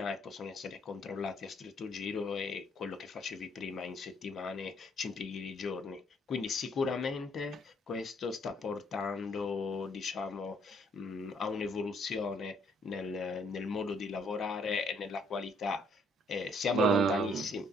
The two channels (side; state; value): both; normal; correlation 0.66